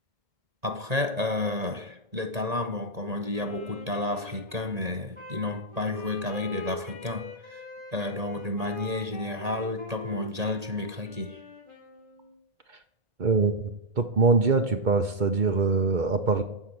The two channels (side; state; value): left; late; 1.8 ms